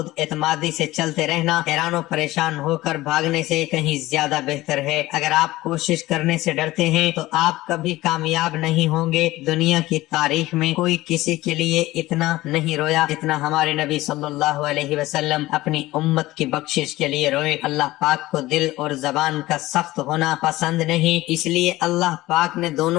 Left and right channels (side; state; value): right; quieter; 17.8 dB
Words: اعتمادی سے چلتے رہنا حیران و پریشان ہو کر بھاگنے سے کہیں زیادہ بہتر ہے۔ اگر آپ کوشش کرنے سے ڈرتے ہیں تو آپ کبھی کامیاب نہیں ہوں گے۔ دنیا کی تاریخ میں کوئی کسی کے لیے اتنا نہیں رویا جتنا ہمارے نبی صلی اللہ علیہ وسلم اپنی امت کی بخشش کے لیے روئے۔ اللہ پاک کو دل اور زبان کا سخت ہونا پسند نہیں، اس لیے اللہ پاک نے